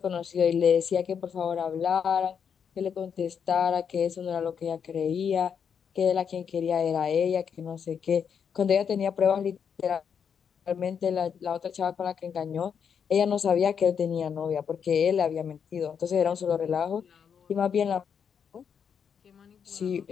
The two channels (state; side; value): quieter; right; 7.2 dB